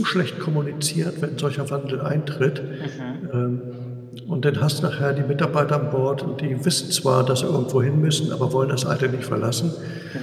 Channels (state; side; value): identical; both; correlation 1.00